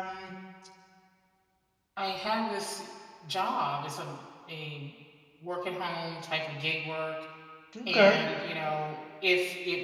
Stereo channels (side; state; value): both; identical; correlation 1.00